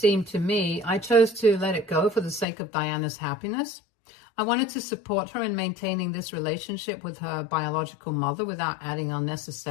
to me, I chose to let it go for the sake of Diana's happiness. I wanted to support her in maintaining this relationship with her biological mother without adding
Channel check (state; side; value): drops out; right; at 2.5 s